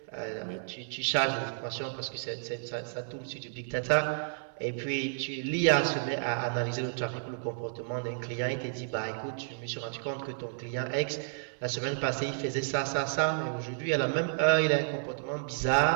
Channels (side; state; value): left; silent; 57 dB below the other